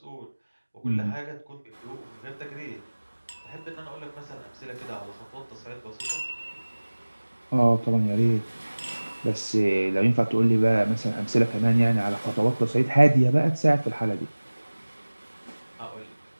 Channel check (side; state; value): both; inverted; correlation -1.00